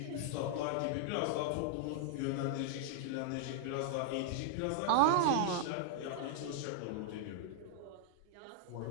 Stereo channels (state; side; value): different; both; correlation -0.01